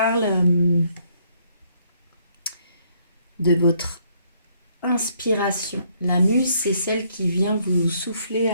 de votre inspiration. La muse, c'est celle qui vient vous souffler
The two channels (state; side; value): inverted; both; correlation -0.69